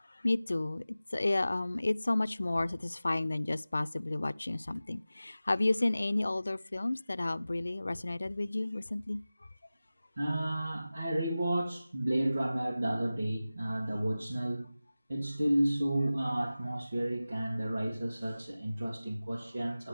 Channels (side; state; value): both; inverted; correlation -0.96